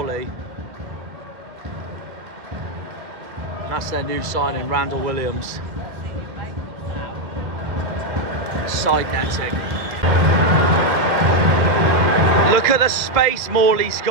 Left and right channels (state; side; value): late; left; 1.9 ms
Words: That's their new signing, Randall Williams. Side netting. Look at the space Morley's